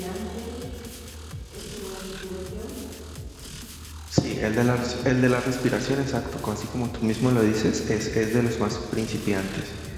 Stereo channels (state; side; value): identical; both; correlation 1.00